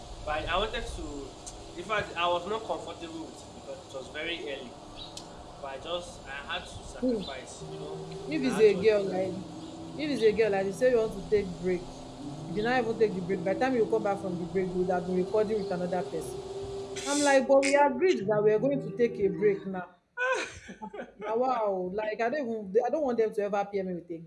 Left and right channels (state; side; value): identical; both; correlation 1.00